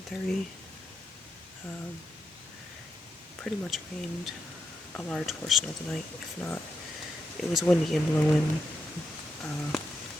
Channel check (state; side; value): normal; both; correlation 0.83